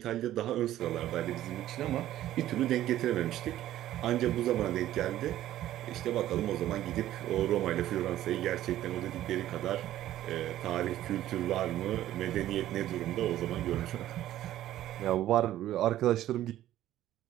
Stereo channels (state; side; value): quieter; left; 13.4 dB